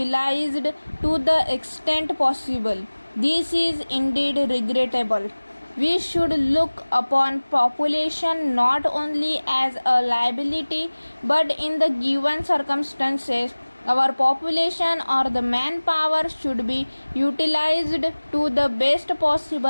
to the extent possible. This is indeed regrettable. We should look upon population not only as a liability but in the given circumstances our population or the manpower should be utilized to the best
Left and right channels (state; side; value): inverted; both; correlation -1.00